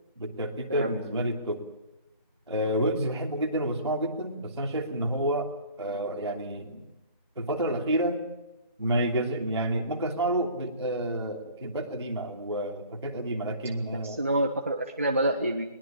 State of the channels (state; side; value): inverted; both; correlation -0.48